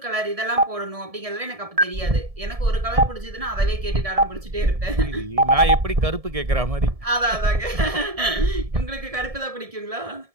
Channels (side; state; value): left; late; 1.7 ms